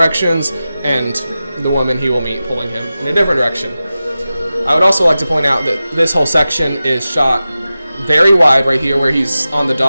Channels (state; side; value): inverted; both; correlation -0.94